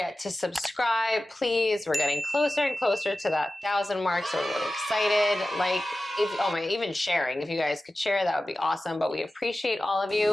to subscribe, please. We're getting closer and closer to that 1,000 mark, so we're really excited. Like, even sharing. If you guys could share, that would be awesome. But we appreciate all of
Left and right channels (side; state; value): both; normal; correlation 0.95